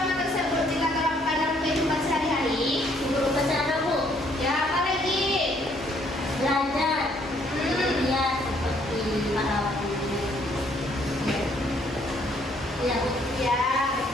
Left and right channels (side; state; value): both; normal; correlation 0.66